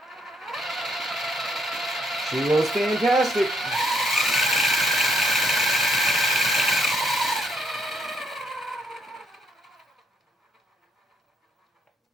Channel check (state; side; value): normal; both; correlation 0.72